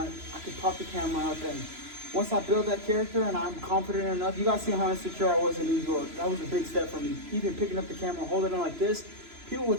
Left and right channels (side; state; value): left; late; 3.0 ms